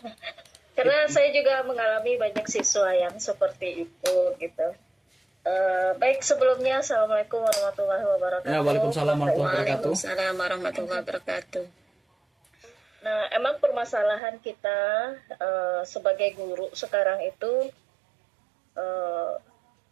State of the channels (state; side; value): drops out; left; at 14.2 s